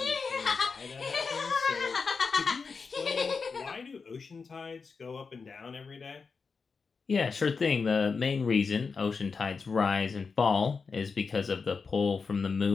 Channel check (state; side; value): quieter; right; 5.0 dB